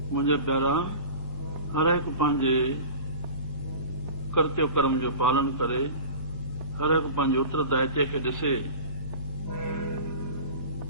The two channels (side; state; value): right; late; 1.1 ms